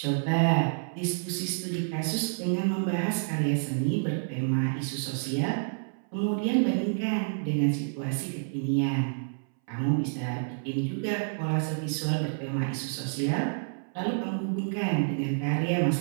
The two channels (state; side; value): silent; left; 59 dB below the other